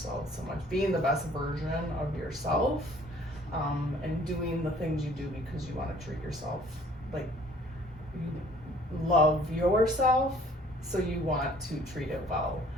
so much, being the best version of yourself, and doing the things you do because you want to treat yourself, like you love yourself, so you want to treat it well.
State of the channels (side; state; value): both; normal; correlation 0.55